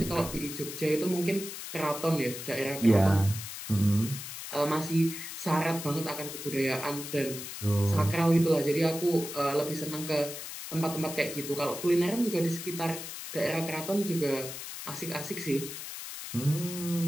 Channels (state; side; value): noise; left; hiss, 9 dB below the sound